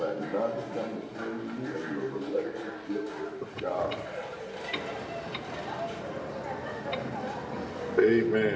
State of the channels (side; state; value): both; identical; correlation 1.00